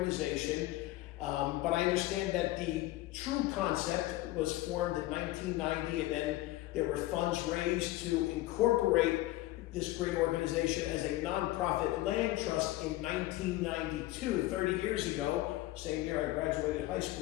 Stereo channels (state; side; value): quieter; right; 17.2 dB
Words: But I understand that the true concept was formed in 1990, and then there were funds raised to incorporate this great organization as a nonprofit land trust in 1992, 30 years ago. Same year I graduated high